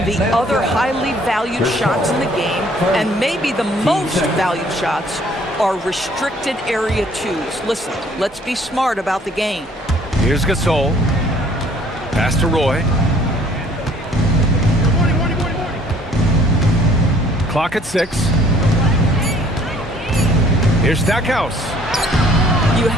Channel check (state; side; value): normal; both; correlation 0.58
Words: the other highly valued shots in the game, and maybe the most valued shots, are restricted area 2s. Listen, let's be smart about the game. Here's Gasol. Pass to Roy. Clock at 6. Here's Stackhouse. You